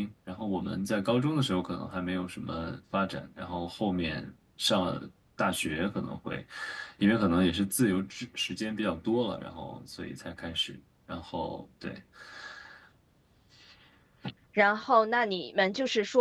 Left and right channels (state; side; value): identical; both; correlation 1.00